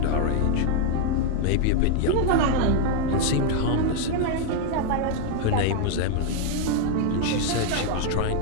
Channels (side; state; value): both; different; correlation 0.00